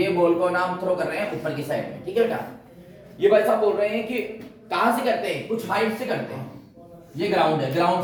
बॉल को ना हम थ्रो कर रहे हैं ऊपर की साइड में, ठीक है बेटा। ये भाई साहब बोल रहे हैं कि कहां से करते हैं? कुछ हाइट से करते हैं। ये ग्राउंड है, ग्राउंड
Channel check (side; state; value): both; identical; correlation 1.00